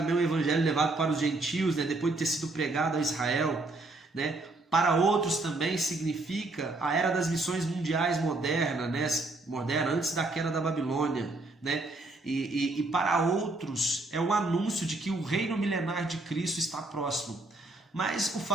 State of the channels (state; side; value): quieter; left; 3.0 dB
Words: o evangelho levado para os gentios, depois de ter sido pregado a Israel, Para outros também significa a era das missões mundiais moderna, antes da queda da Babilônia, E para outros é um anúncio de que o reino milenar de Cristo está próximo. Mas o